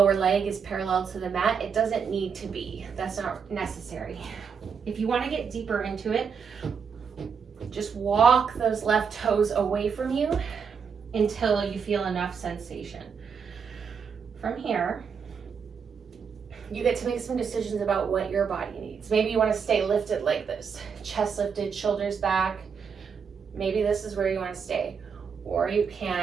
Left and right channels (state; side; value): quieter; left; 6.4 dB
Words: leg is parallel to the mat. It doesn't need to be. That's not necessary. If you want to get deeper into it, just walk those left toes away from you until you feel enough sensation. From here, you get to make some decisions about what your body needs. Maybe you want to stay lifted like this, chest lifted, shoulders back. Maybe this is where you want to stay. Or you